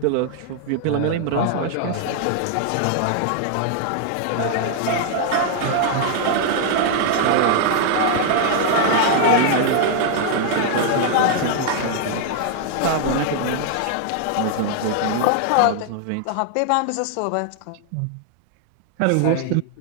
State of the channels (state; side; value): different; both; correlation 0.00